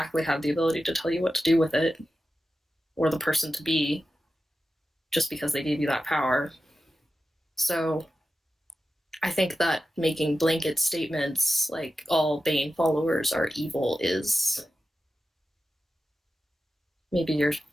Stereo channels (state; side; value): normal; both; correlation 0.92